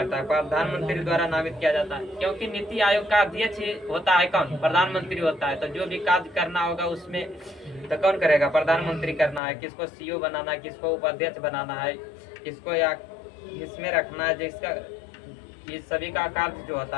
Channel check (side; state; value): right; drops out; at 9.4 s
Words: है? प्रधानमंत्री द्वारा नामित किया जाता है। क्योंकि नीति आयोग का अध्यक्ष होता है कौन? प्रधानमंत्री होता है। तो जो भी कार्य करना होगा उसमें तो कौन करेगा? प्रधानमंत्री करना है। किसको सीईओ बनाना है, किसको उपाध्यक्ष बनाना है, किसको या इसमें रखना है, जिसका ये सभी का कार्य जो